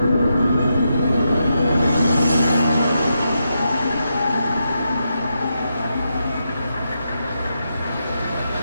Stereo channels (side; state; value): both; inverted; correlation -0.84